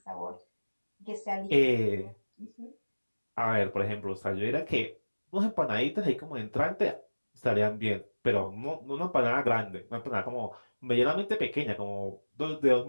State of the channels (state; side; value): inverted; both; correlation -1.00